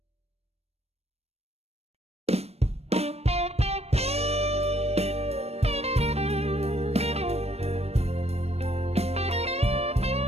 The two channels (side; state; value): left; late; 0.30 ms